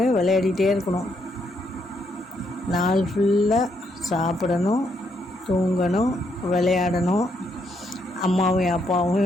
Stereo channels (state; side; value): normal; both; correlation 0.76